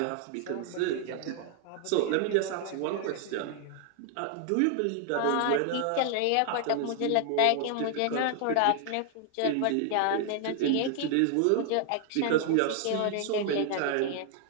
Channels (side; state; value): both; different; correlation 0.00